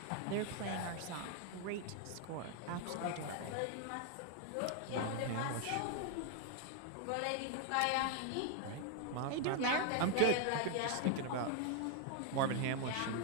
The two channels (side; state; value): both; different; correlation 0.00